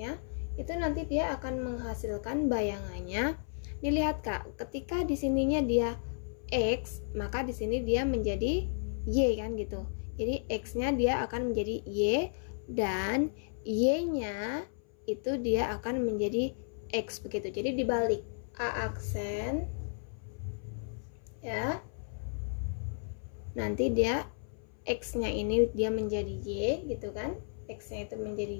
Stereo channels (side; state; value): right; silent; 56 dB below the other